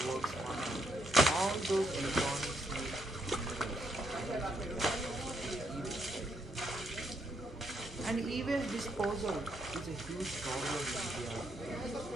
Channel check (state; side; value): normal; both; correlation 0.76